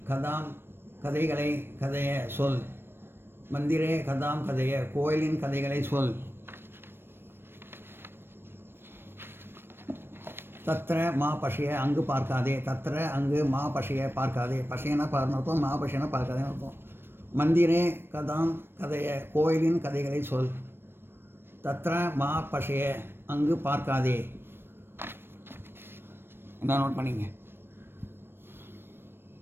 கதைகளை கதைய சொல். மந்திரே கதாம் கதைய கோயிலின் கதைகளை சொல். தத்ர மா பஷய அங்கு பார்க்காதே. தத்ர அங்கு மா பஷய பார்க்காதே. பஷயனா பார்னு அர்த்தம், மா பஷயனா பார்க்காதேன்னு அர்த்தம். மந்திரே கதாம் கதைய கோயிலின் கதைகளை சொல். தத்ர மா பஷய அங்கு பார்க்காதே. என்ன நோட் பண்ணிங்க.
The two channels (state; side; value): late; left; 0.11 ms